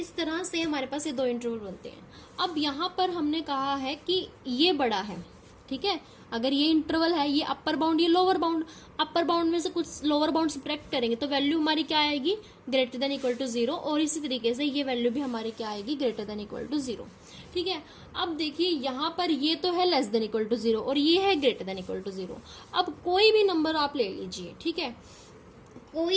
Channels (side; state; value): both; identical; correlation 1.00